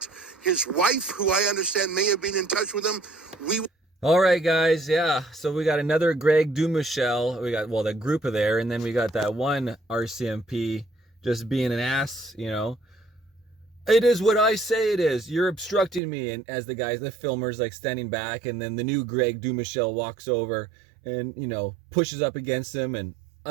his wife, who I understand may have been in touch with him. All right, guys. Yeah. So we got another Greg Dumichel. We got, well, the group of there. And then we got that one RCMP just being an ass, you know. It is what I say it is. You're obstructing me. And as the guys, the filmers, like standing back. And then the new Greg Dumichel walks over and, you know, pushes up against him and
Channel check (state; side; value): drops out; left; at 16.0 s